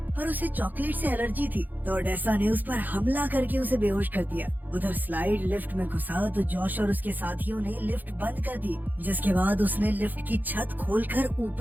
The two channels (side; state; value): left; late; 0.085 ms